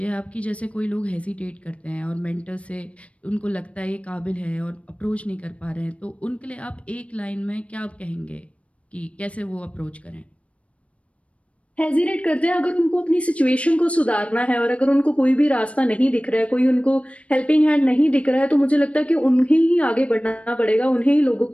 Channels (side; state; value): right; late; 0.063 ms